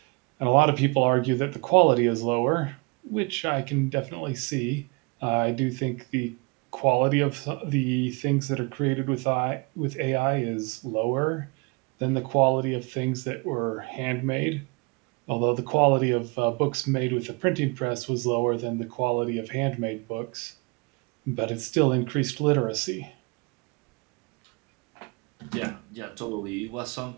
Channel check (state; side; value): quieter; left; 29.8 dB